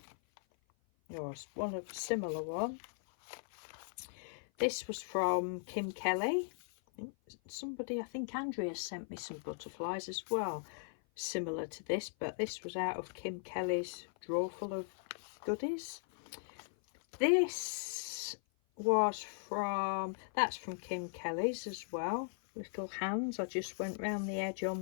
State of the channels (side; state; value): right; silent; 52 dB below the other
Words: or one of a similar one. This was from Kim Kelly. Somebody, I think Andrea, sent me some butterflies as well, similar to this, but this was out of Kim Kelly's drawer full of goodies. This was from, that's from Kim Kelly's as well. Little hands. I just went round the edge